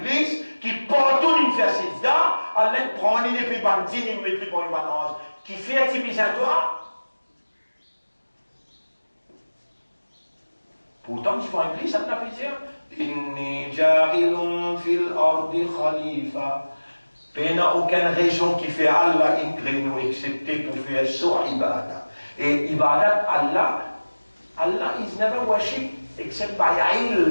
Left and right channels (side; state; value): both; inverted; correlation -1.00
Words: qui partout il fait sida, Allah prend une épée bandine, il met pour une balance. Qui fait activiser à toi. Pourtant, tu vois Iblis, ça ne peut dire Inni ja'ilun fil ardi khalifa. Il n'y a aucune région qui fait Allah inclinou, excepté pour faire sur ibadah. Et ibadat Allah is never worship except by